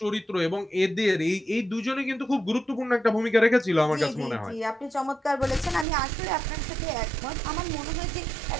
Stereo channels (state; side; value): drops out; left; at 5.9 s